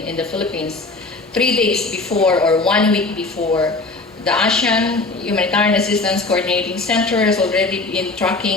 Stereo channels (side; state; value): right; quieter; 3.5 dB